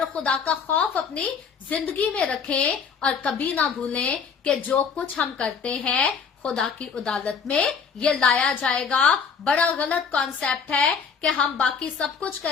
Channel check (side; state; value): right; quieter; 6.1 dB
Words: खुदा का खौफ अपनी जिंदगी में रखें, और कभी ना भूलें कि जो कुछ हम करते हैं खुदा की अदालत में ये लाया जाएगा। बड़ा गलत कॉन्सेप्ट है कि हम बाकी सब कुछ